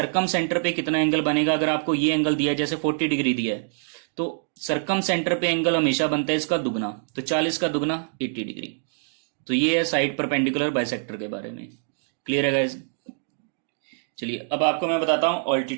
सेंटर पे कितना एंगल बनेगा, अगर आपको ये एंगल दिया है जैसे 40 डिग्री दिया है, तो सर्कम सेंटर पे एंगल हमेशा बनता है इसका दुगना, तो 40 का दुगना 80 डिग्री। तो ये है साइड परपेंडिकुलर बाइसेक्टर के बारे में। क्लियर है गाइस। चलिए अब आपको मैं बताता हूं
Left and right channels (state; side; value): silent; left; digital silence